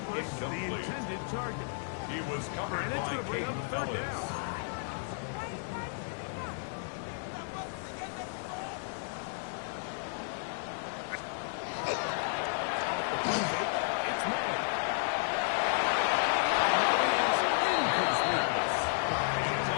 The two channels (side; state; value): right; silent; digital silence